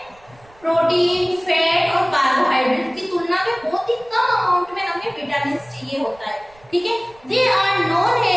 प्रोटीन, फैट और कार्बोहाइड्रेट की तुलना में बहुत ही कम अमाउंट में हमें विटामिन चाहिए होता है, ठीक है। They are known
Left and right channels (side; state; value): right; noise; rumble, 28 dB below the sound